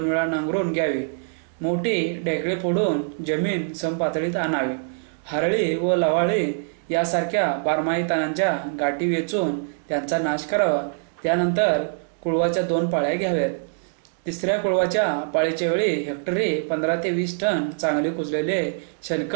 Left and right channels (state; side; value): silent; left; 62 dB below the other